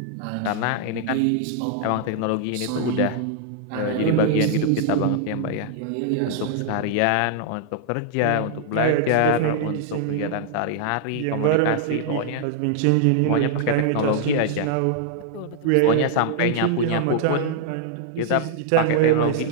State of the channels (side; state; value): both; different; correlation -0.01